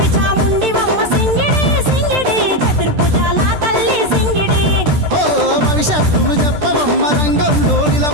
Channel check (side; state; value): left; late; 13 ms